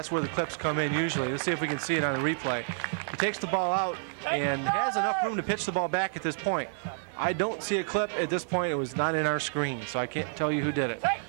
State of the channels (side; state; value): left; silent; digital silence